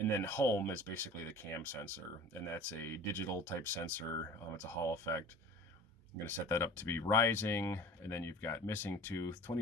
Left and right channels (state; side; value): normal; both; correlation 0.41